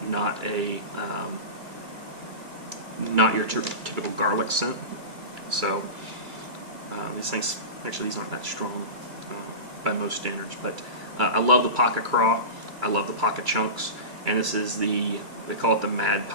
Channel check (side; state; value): left; late; 2.3 ms